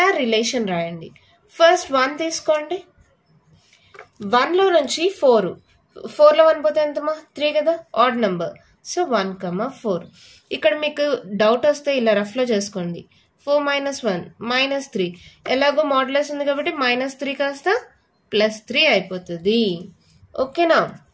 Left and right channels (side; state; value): both; identical; correlation 1.00